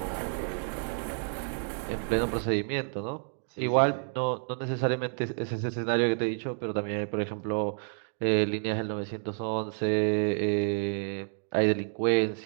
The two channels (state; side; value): silent; left; digital silence